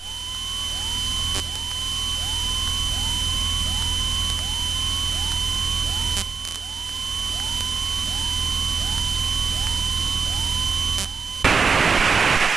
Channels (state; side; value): quieter; left; 5.3 dB